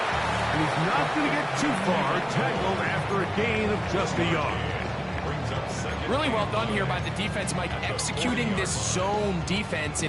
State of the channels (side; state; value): both; identical; correlation 1.00